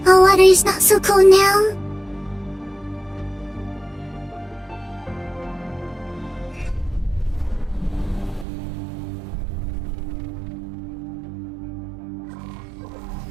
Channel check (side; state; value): left; drops out; at 8.5 s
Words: Oh, water is not so cold now.